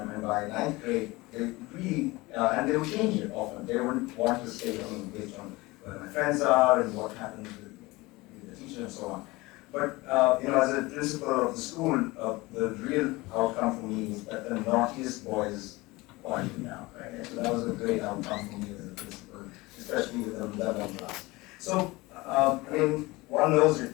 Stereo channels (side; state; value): right; quieter; 21.9 dB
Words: and by 9th grade, they really, and they would change it often. They wouldn't want to stay based on where my friends are and what happens with the teacher and so on. But as a principal of the school, the real outcome for me was that the naughtiest boys quieted down, right? So that was a great outcome for me as a principal, especially with the 11th class. So, one knows